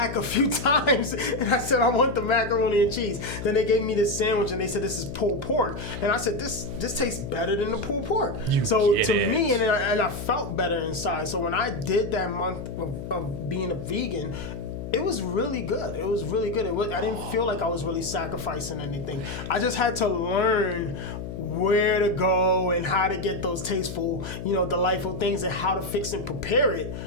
a few times and I said, I want the macaroni and cheese. Then they gave me this sandwich and they said, this is pulled pork. And I said, this tastes better than the pulled pork. Me, and I felt better inside. So when I did that month of being a vegan, it was really good. It was really good. I didn't feel like I was really sacrificing anything. I just had to learn where to go and how to get those tasteful, delightful things, and how to fix and prepare it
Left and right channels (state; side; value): noise; left; hum, 8 dB below the sound